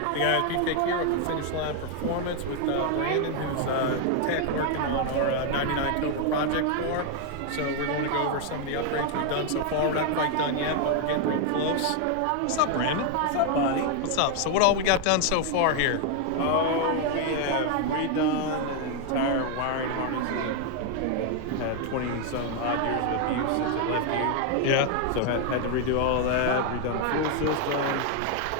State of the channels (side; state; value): both; different; correlation 0.00